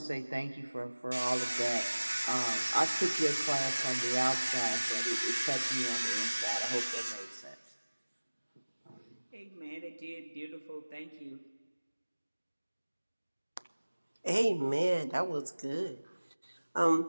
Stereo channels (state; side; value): inverted; both; correlation -1.00